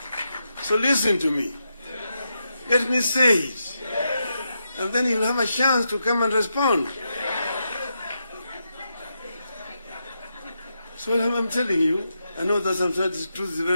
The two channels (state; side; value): inverted; both; correlation -0.85